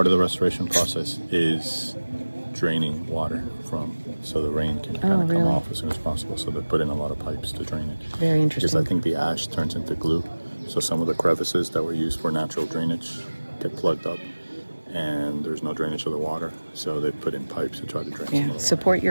of the restoration process is draining water so the rain can kind of come really? off as soon as possible. So they put in a lot of pipes to drain it. Very interesting. Because I think the ash turns into glue. So some of the crevices that were used for natural drainage get plugged up, and there's no drainage of the water. So they put in pipes to try to drain some of the water. Support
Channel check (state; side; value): inverted; both; correlation -1.00